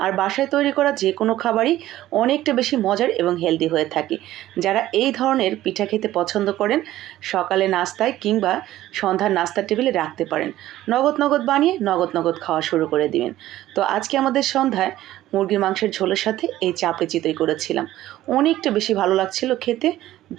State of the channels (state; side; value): quieter; left; 14.5 dB